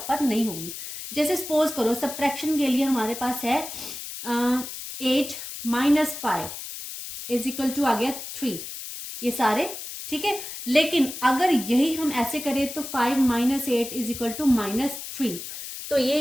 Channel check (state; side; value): noise; left; hiss, 9 dB below the sound